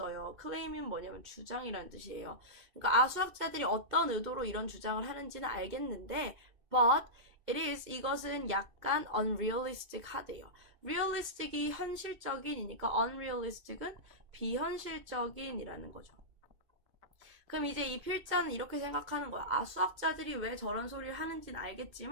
클레임은 뭐냐면 주장이라는 뜻이에요. 그러니까 수학자들이 어떤 의도로 이런 주장을 하는지는 알겠는데, but 이것은 약간 unrealistic 하대요. realistic이 현실적인이니까 unrealistic은 비현실적인이라는 거죠. 그럼 이제 이 필자는 이렇게 생각하는 거야. 수학자들이 왜 저런 소리를 하는지는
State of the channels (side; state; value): left; late; 2.6 ms